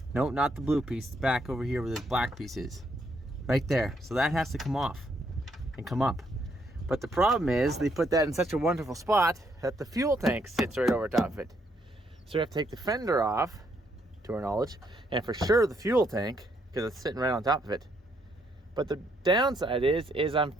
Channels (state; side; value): normal; both; correlation 0.73